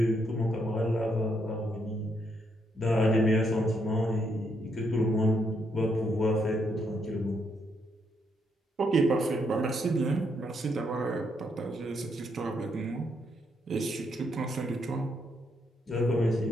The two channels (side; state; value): both; normal; correlation 0.76